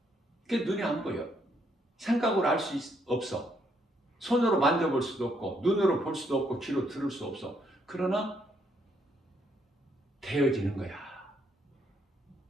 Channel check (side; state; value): both; normal; correlation 0.73